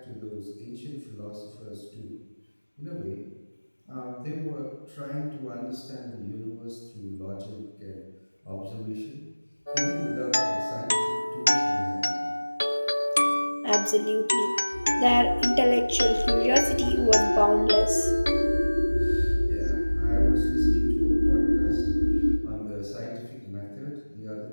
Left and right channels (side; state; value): both; inverted; correlation -1.00